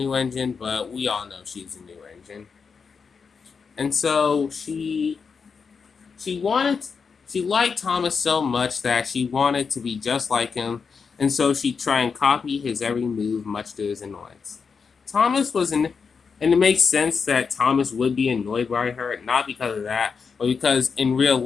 engine, but we all know she's a new engine. And so she liked Thomas so much that she wanted to be just like him, and so she'd try and copy his every move, much to his annoyance. Thomas was an And it makes sense that Thomas would be annoyed by her, not because of that, but because in real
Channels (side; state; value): right; quieter; 5.6 dB